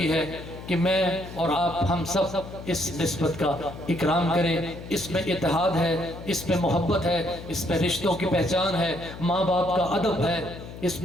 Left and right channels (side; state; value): left; noise; hum, 13 dB below the sound